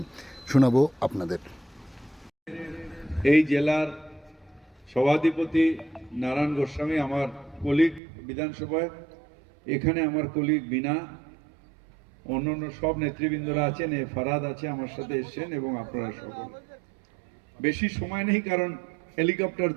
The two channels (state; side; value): drops out; left; at 8.0 s